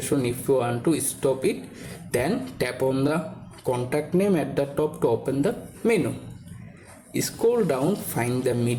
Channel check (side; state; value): both; identical; correlation 1.00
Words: if you want to stop it, then tap on the contact name at the top to open the menu. Scroll down, find the